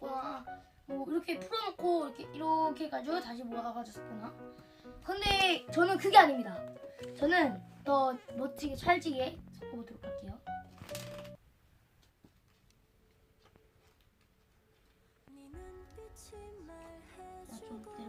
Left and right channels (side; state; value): both; identical; correlation 1.00